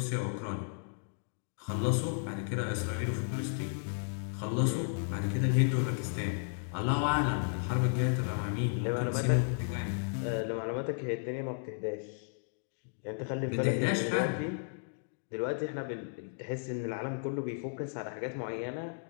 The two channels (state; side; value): silent; right; digital silence